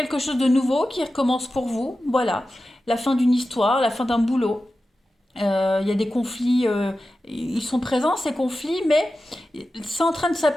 chose de nouveau qui recommence pour vous. Voilà. La fin d'une histoire, la fin d'un boulot. Il y a des conflits, ils sont présents ces conflits, mais c'est en train de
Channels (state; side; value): normal; both; correlation 0.93